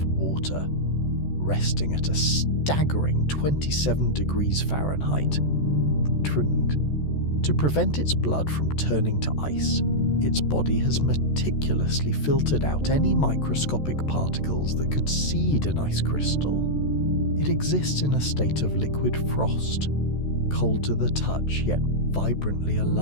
water, resting at a staggering 27 degrees Fahrenheit. To prevent its blood from turning to ice, its body has meticulously filtered out any microscopic particles that could seed an ice crystal. It exists in a state of liquid frost, cold to the touch yet vibrantly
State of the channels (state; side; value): late; right; 14 ms